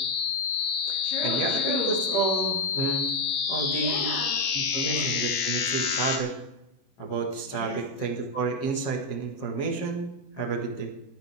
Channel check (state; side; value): late; right; 22 ms